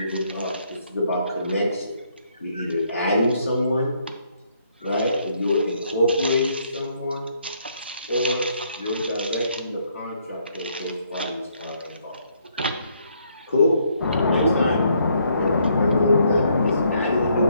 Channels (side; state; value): both; inverted; correlation -0.70